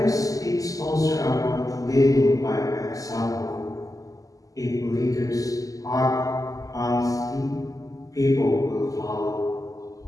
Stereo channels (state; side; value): late; right; 0.17 ms